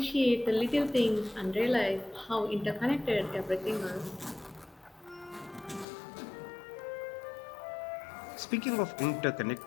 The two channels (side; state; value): right; drops out; at 5.9 s